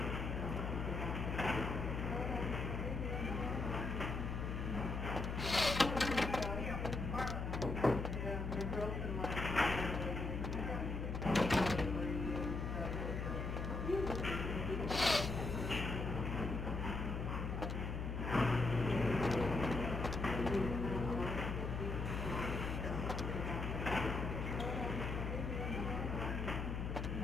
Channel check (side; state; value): left; noise; hum, 2 dB below the sound